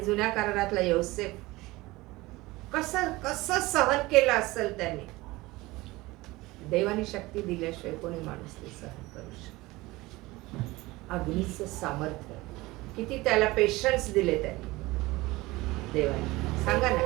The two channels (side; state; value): left; quieter; 20.4 dB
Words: जुन्या करारातला योसेफ कसं कसं सहन केलं असेल त्यांनी. देवानी शक्ती दिल्याशिवाय कोणी माणूस ते सहन करू शकतो. अग्नीचं सामर्थ्य, किती त्याला पेशन्स दिले त्यांनी देवाने. सांगा